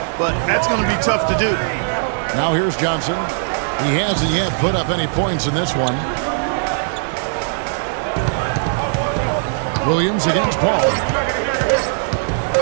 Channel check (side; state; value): left; silent; 60 dB below the other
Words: but that's going to be tough to do. Now here's Johnson. He hasn't yet put up any points in this one. Williams against Paul.